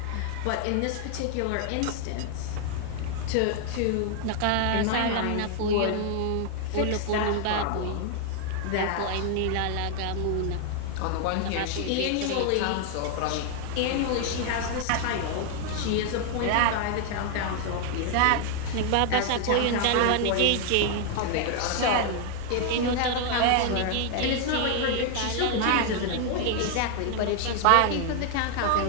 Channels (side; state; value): both; different; correlation 0.00